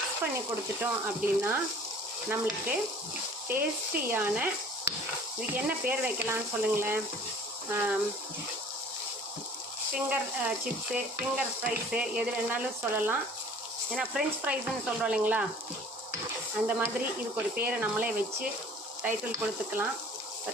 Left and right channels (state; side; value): normal; both; correlation 0.50